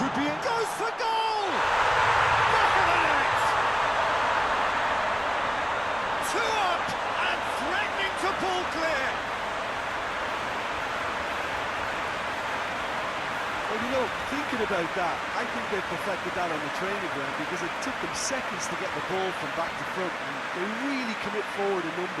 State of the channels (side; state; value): both; identical; correlation 1.00